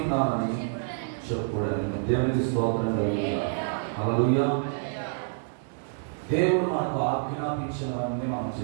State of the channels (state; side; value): silent; left; digital silence